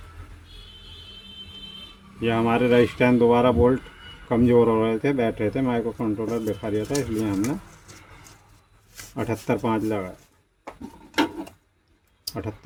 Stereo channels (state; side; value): identical; both; correlation 1.00